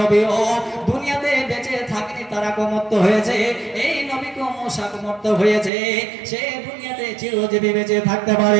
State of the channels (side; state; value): left; drops out; at 5.7 s